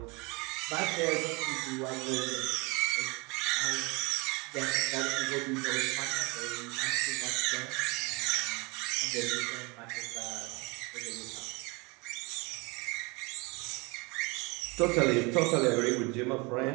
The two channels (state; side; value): quieter; left; 27.7 dB